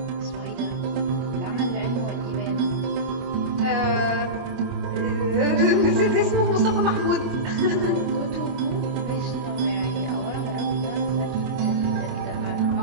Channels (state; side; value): late; left; 24 ms